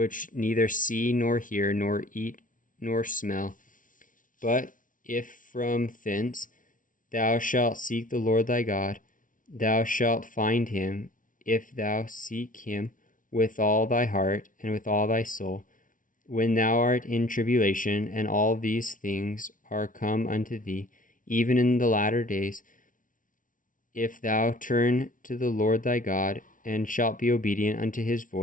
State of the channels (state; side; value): late; right; 0.38 ms